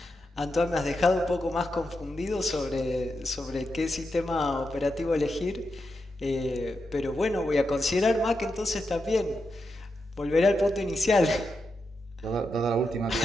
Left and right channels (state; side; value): normal; both; correlation 0.86